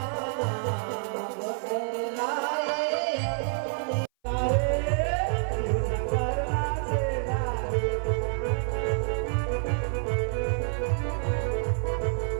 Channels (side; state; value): left; silent; 57 dB below the other